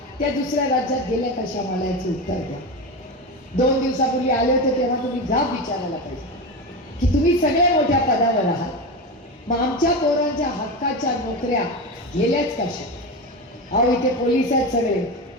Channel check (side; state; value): both; normal; correlation 0.20